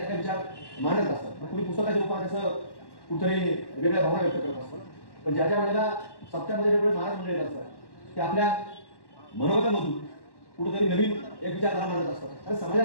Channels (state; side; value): late; right; 1.1 ms